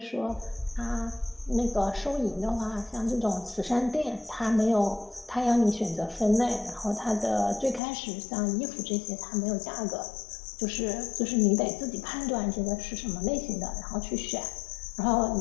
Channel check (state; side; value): drops out; right; at 7.8 s